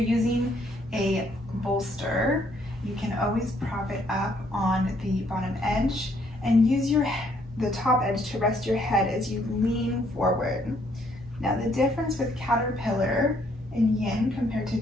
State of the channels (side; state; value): both; normal; correlation 0.68